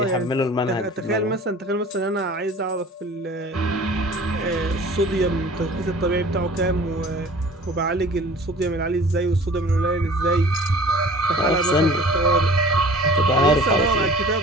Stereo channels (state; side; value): normal; both; correlation 0.46